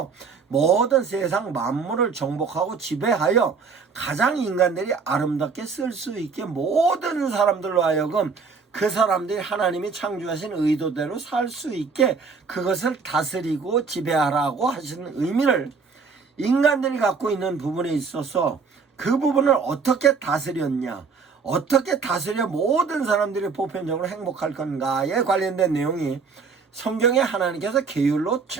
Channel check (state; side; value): quieter; left; 5.2 dB